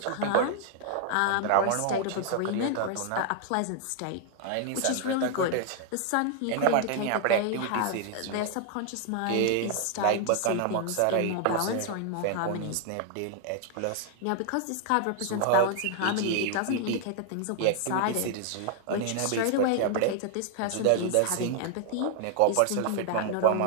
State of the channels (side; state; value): both; different; correlation 0.00